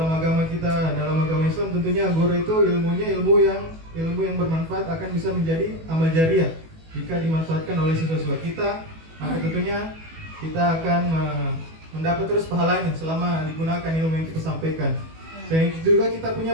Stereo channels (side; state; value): left; late; 18 ms